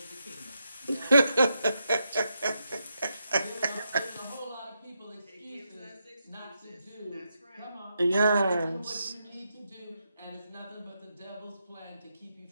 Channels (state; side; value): inverted; both; correlation -0.83